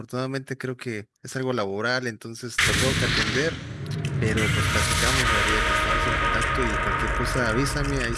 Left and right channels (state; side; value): identical; both; correlation 1.00